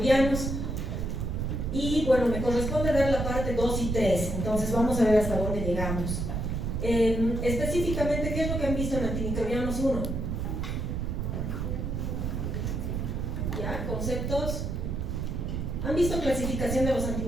Y bueno, me corresponde dar la parte 2 y 3, entonces vamos a ver hasta dónde llegamos. Específicamente, ¿qué es lo que han visto en Antimicrobianos 1? ¿Ya? ¿Conceptos? ¿Han visto clasificación de los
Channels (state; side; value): noise; right; rumble, 2 dB below the sound